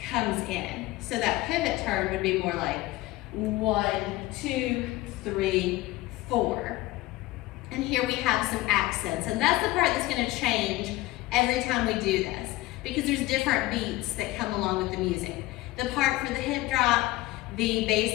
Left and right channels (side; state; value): right; quieter; 18.4 dB